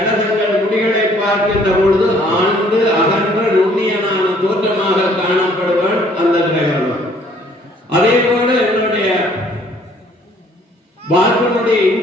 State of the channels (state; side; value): normal; both; correlation 0.60